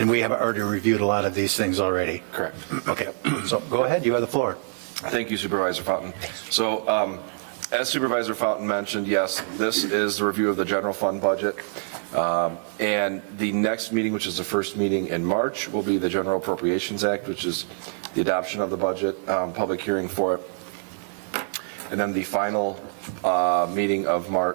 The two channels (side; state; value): left; silent; digital silence